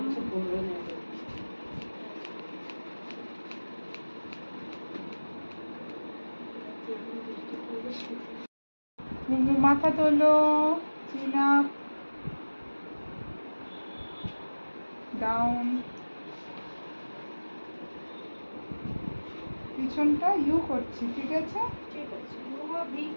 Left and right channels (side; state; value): both; inverted; correlation -1.00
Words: মাথা তোলো, চিন আপ, ডাউন, পিছনটা ইউ করছি, ঠিক আছে?